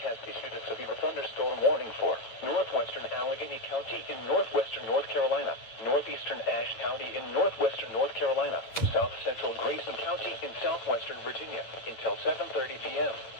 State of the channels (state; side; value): late; right; 8.7 ms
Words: Has issued a severe thunderstorm warning for northwestern Allegheny County in northwestern North Carolina, northeastern Ashe County in northwestern North Carolina, south central Grayson County in southwestern Virginia until 7:30 p.m.